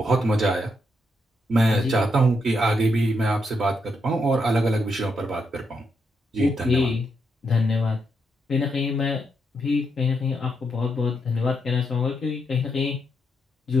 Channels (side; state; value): both; normal; correlation 0.80